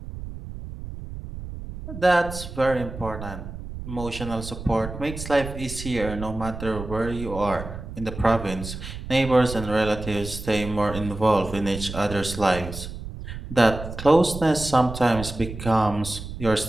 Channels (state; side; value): noise; right; rumble, 10 dB below the sound